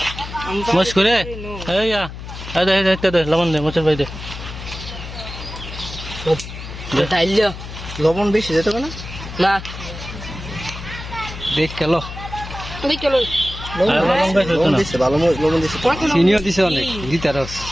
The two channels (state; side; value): noise; left; hum, 11 dB below the sound